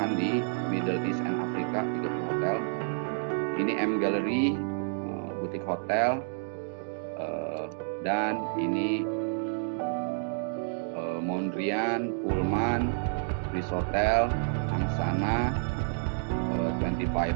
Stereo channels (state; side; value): silent; left; digital silence